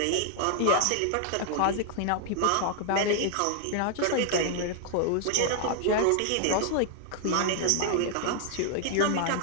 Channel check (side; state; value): both; different; correlation 0.00